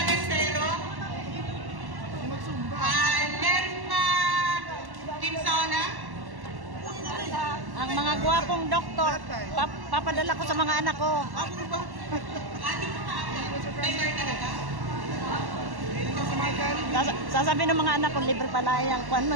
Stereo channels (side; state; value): left; late; 1.1 ms